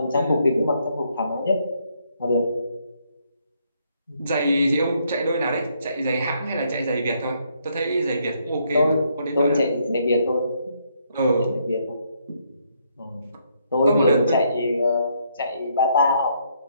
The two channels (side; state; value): both; inverted; correlation -0.72